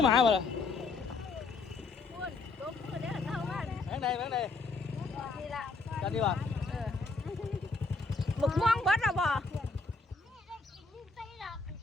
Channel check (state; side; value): quieter; right; 3.9 dB